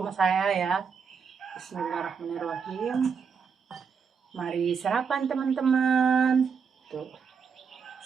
saya ya. Bismillahirrahmanirrahim. Mari sarapan teman-teman. Tuh.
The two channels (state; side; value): quieter; left; 6.1 dB